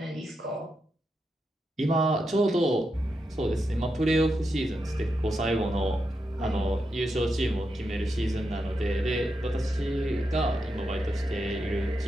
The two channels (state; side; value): normal; both; correlation 0.85